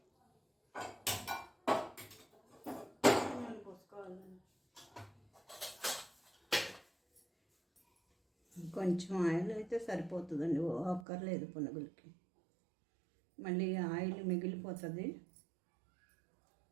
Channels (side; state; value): left; drops out; at 11.1 s